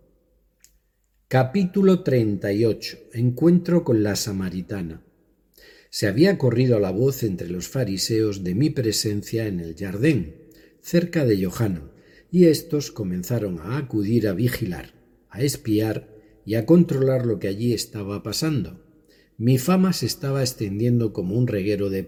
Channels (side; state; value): both; identical; correlation 1.00